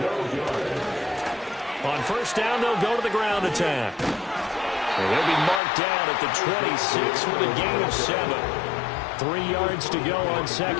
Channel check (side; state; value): right; drops out; at 5.6 s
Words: On first down, they'll go to the ground attack. And they'll be marked down at the 26 with a gain of 7. 3 yards to go on